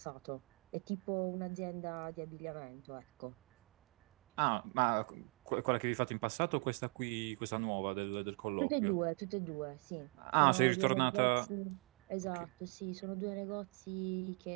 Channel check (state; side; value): quieter; left; 39.0 dB